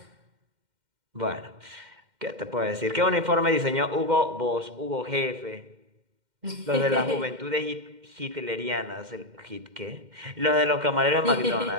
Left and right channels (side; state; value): left; late; 2.1 ms